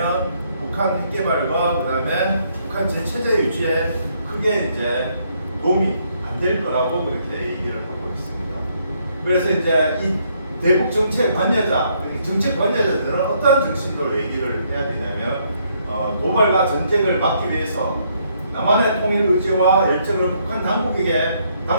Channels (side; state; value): both; inverted; correlation -0.71